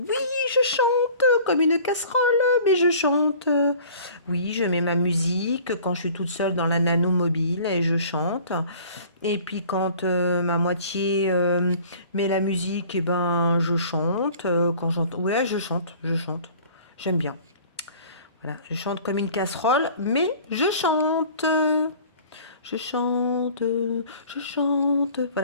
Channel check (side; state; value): both; inverted; correlation -0.48